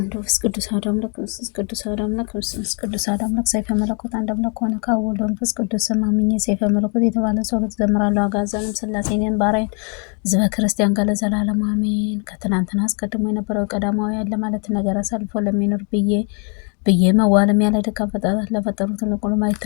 ወመንፈስ ቅዱስ አሐዱ አምላክ መንፈስ ቅዱስ አሐዱ አምላክ መንፈስ ቅዱስ አሐዱ አምላክ ሰይፈ መለኮት አንድ አምላክ ሆነ ከወልድ መንፈስ ቅዱስ ስም አምኜ ሰይፈ መለኮት የተባለ ጸሎት ዘምራለሁ። አጋዘንም ሥላሴን ባሪያን ሕዝበ ክርስቲያን ጋር ለዘላለም አሜን። ከትናንትና አስቀድሞ የነበረው ቀዳማዊ ያለ ማለት ነገር አሳልፎ ለሚኖር ብዬ መዋለም ያለ ድካም ፈጣጣት ለፈጠሩት ለቁሉ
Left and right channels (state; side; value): quieter; right; 39.0 dB